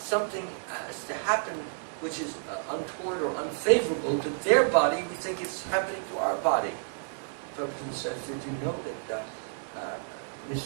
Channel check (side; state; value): left; silent; 58 dB below the other